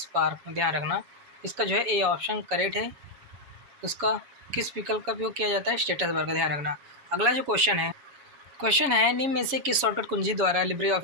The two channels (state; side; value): late; left; 7.2 ms